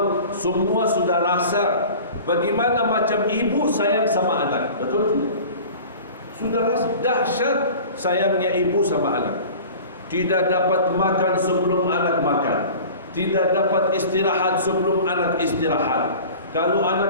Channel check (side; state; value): both; inverted; correlation -0.41